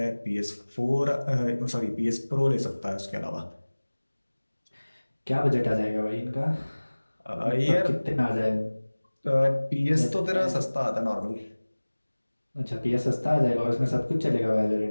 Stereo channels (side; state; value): both; inverted; correlation -1.00